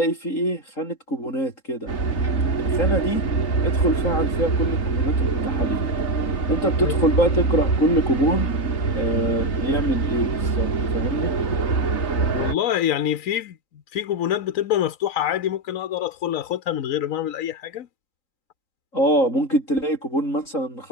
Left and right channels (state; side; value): late; right; 3.9 ms